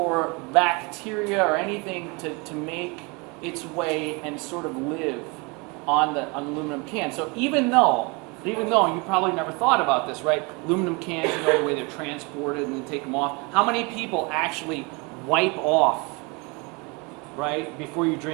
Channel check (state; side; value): quieter; left; 29.1 dB